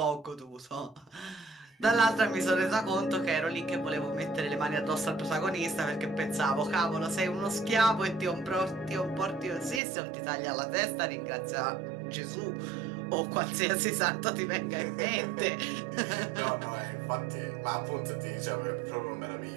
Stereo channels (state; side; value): drops out; left; at 9.8 s